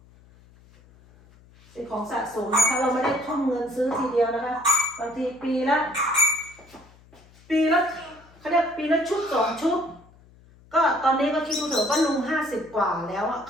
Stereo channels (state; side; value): noise; left; hum, 26 dB below the sound